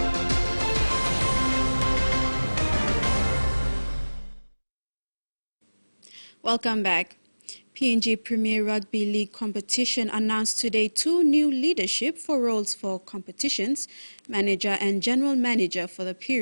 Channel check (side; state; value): both; inverted; correlation -1.00